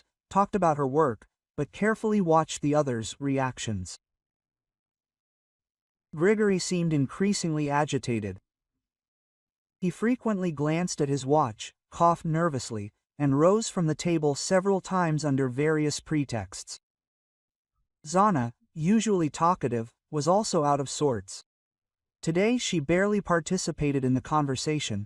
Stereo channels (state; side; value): identical; both; correlation 1.00